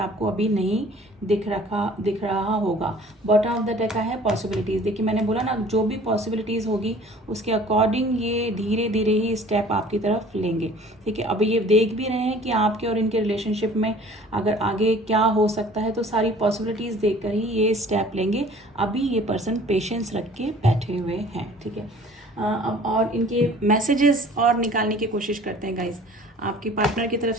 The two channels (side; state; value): both; normal; correlation 0.49